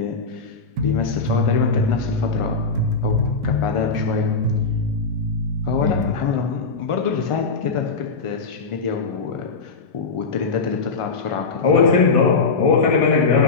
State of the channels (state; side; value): quieter; right; 4.3 dB